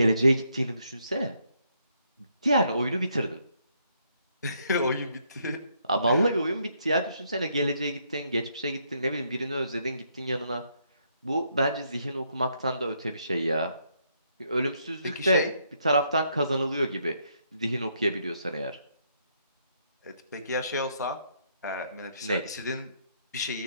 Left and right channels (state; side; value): inverted; both; correlation -0.74